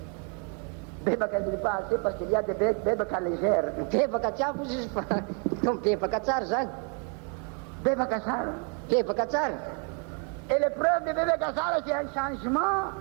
Bebaka ne dit pas assez parce qu'il y a des bebaka légères. Bebaka tsy ampy izy fa tom bebaka tsara zany. Bebaka tsara. Bebaka tsara. Et l'épreuve de bebaka tsara, c'est un changement.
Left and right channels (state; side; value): quieter; left; 38.4 dB